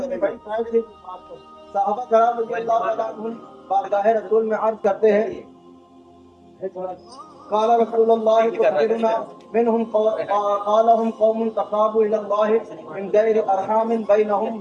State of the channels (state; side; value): identical; both; correlation 1.00